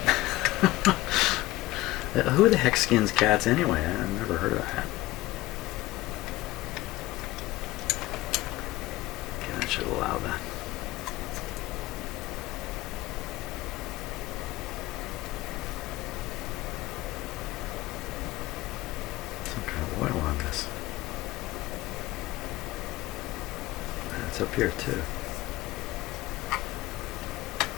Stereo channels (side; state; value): right; quieter; 18.2 dB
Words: Who the heck skins cats anyway? I've never heard of that. Okay, that should allow that. Some kind of oil on this. It's up here too.